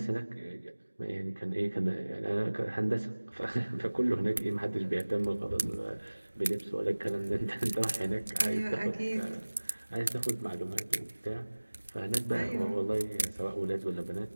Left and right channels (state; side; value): inverted; both; correlation -1.00